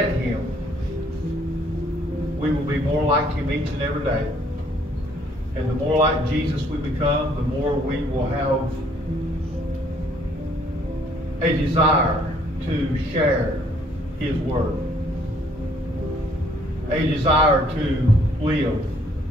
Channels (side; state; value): both; normal; correlation 0.63